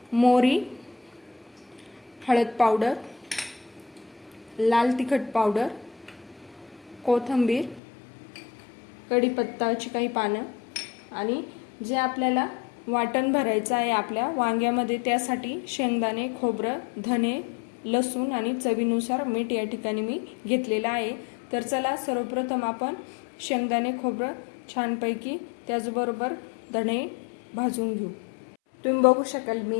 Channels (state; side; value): drops out; right; at 7.8 s